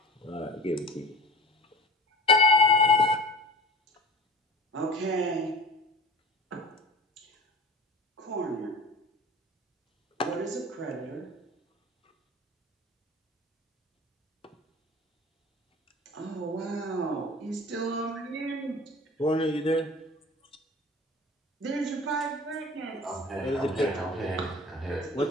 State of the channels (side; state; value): both; normal; correlation 0.39